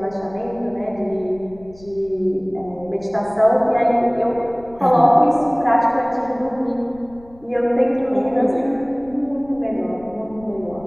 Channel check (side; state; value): left; noise; rumble, 24 dB below the sound